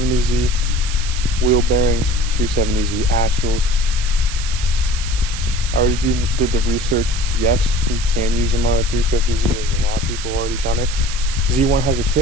wheel bearings, 370Z axles. I already did the research. Yes, you can use them on a 350Z. There's a lot of people already done it. Z1 has a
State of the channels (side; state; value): right; noise; hiss, 9 dB below the sound